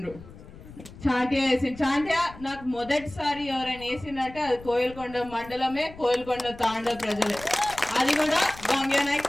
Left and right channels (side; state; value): left; noise; rumble, 18 dB below the sound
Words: చాంటియా వేసిండు చాంటియా నాకు మొదటిసారి ఎవరైనా వేసిందంటే అది కోయిల్కొండ మండలమే కోయిల్కొండ తాండ ప్రజలే అది కూడా గంగానాయక్